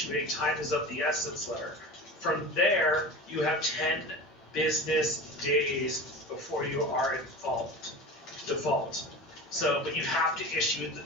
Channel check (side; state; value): both; normal; correlation 0.32